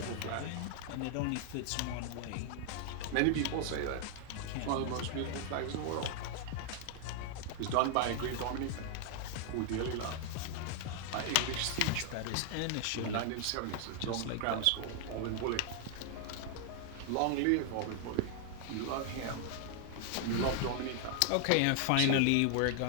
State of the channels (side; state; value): both; different; correlation 0.00